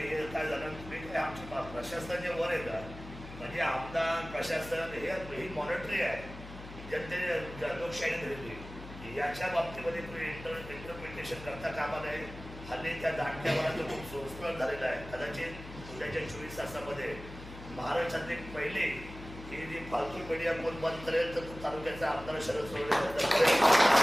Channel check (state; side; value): noise; left; hum, 13 dB below the sound